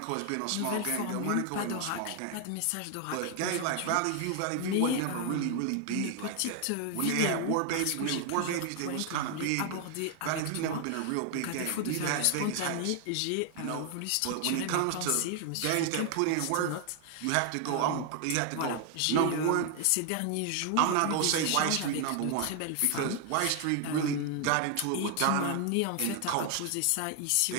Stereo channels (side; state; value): both; different; correlation 0.00